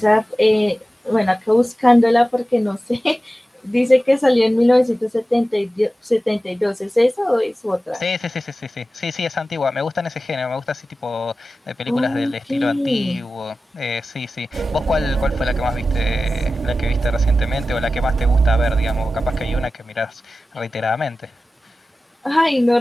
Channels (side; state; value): both; normal; correlation 0.95